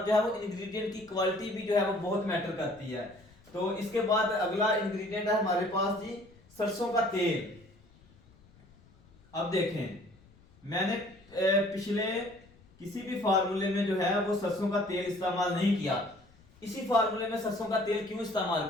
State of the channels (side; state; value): left; noise; rumble, 27 dB below the sound